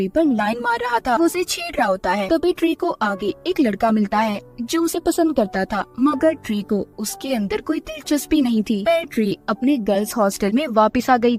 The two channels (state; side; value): identical; both; correlation 1.00